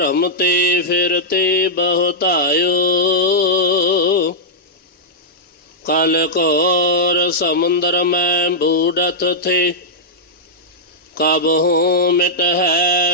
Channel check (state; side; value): normal; both; correlation -0.10